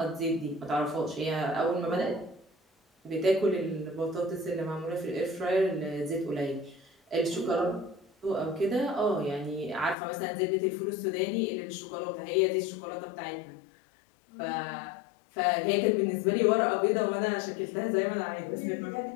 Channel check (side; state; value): right; drops out; at 10.0 s